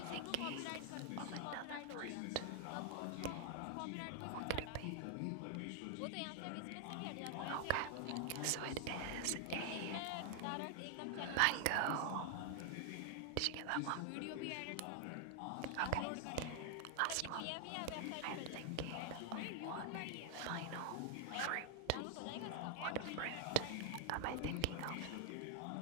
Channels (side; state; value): both; different; correlation 0.00